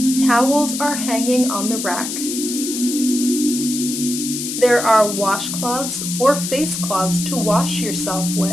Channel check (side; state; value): left; noise; hiss, 5 dB below the sound